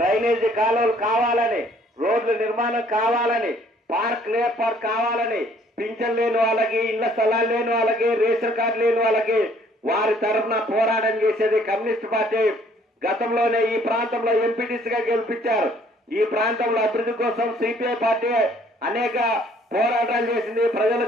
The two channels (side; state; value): both; normal; correlation 0.61